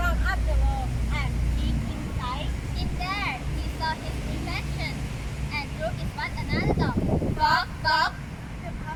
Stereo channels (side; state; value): both; identical; correlation 1.00